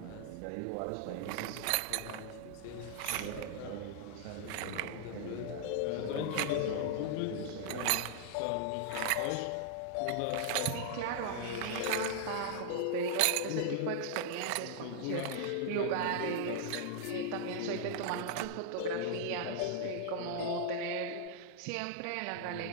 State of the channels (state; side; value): different; both; correlation -0.01